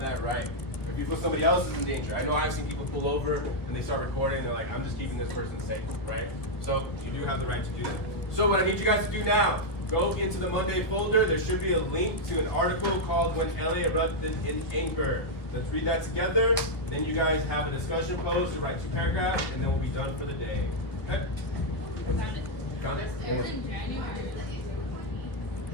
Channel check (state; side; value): late; right; 1.8 ms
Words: right. If you feel somebody else is in danger, I know I've seen people pull over and they start recording, and they're like, "I'm just keeping this person safe," right? So you do have the right to do that. So what I need you guys to do now, go into the Monday folder. There should be a link to an article called "When LA Erupted in Anger." Let's read that together. Then you guys have a discussion post to write 2 paragraphs, and then we'll be done for the day. Okay? Found it? It was in January.